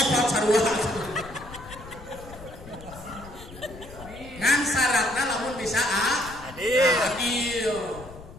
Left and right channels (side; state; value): left; noise; rumble, 16 dB below the sound